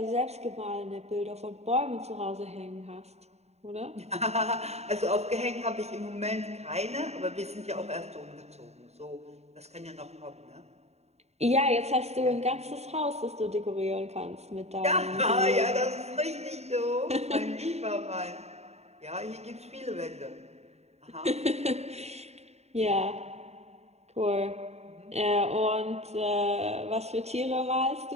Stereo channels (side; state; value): left; late; 0.31 ms